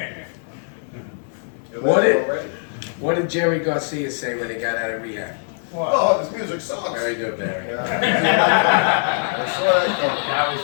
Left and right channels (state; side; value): silent; right; digital silence